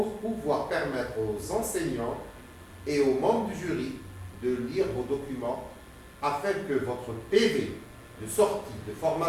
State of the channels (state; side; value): identical; both; correlation 1.00